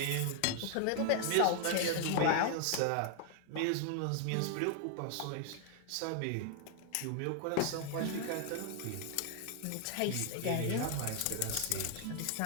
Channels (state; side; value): different; both; correlation 0.00